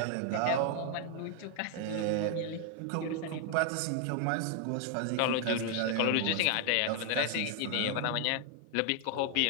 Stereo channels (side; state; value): both; different; correlation 0.00